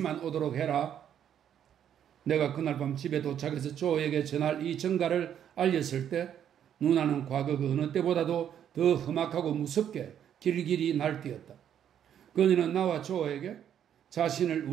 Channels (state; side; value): quieter; left; 9.5 dB